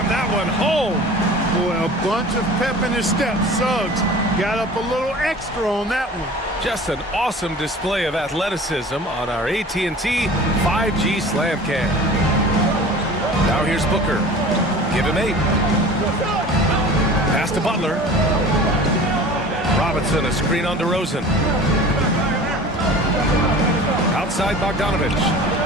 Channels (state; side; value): normal; both; correlation 0.41